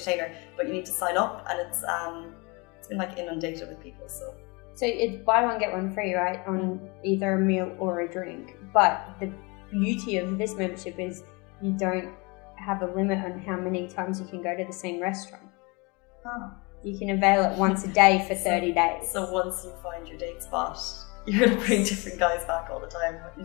but you need to sign up, and it's been like inundated with people. So it's buy one get one free, right, on either a meal or a drink. But the beauty of this membership is you don't have a limit on how many times you can go to the same restaurant. Oh. You can avail it once a day for 30 days. So once you find your date spot, you're going to bring different guys back all the time.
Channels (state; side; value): quieter; right; 28.1 dB